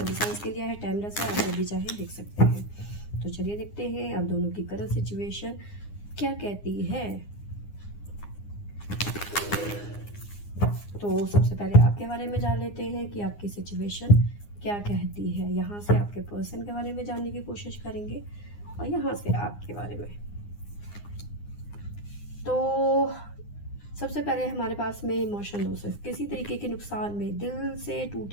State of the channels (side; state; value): right; late; 9.8 ms